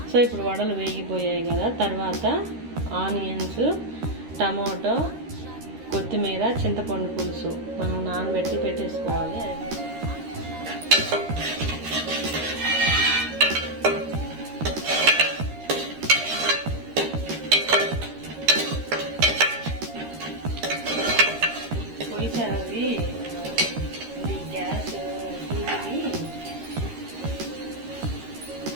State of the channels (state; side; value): late; left; 13 ms